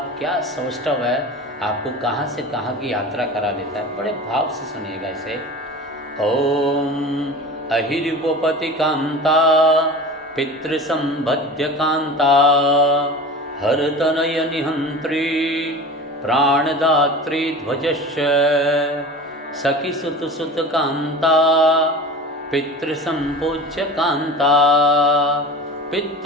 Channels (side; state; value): both; normal; correlation 0.35